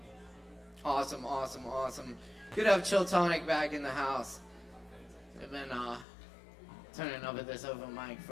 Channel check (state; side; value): drops out; right; at 6.1 s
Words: Awesome, awesome, awesome. Good to have Chill Tonic back in the house. They've been turning over this open mic